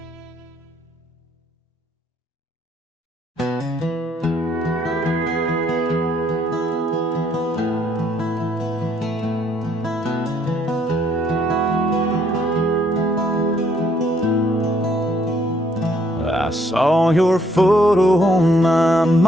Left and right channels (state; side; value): normal; both; correlation 0.67